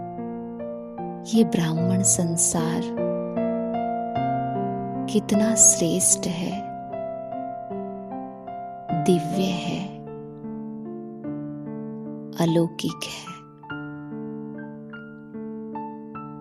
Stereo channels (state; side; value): identical; both; correlation 1.00